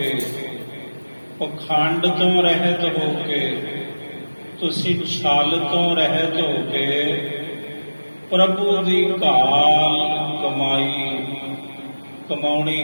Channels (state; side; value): inverted; both; correlation -1.00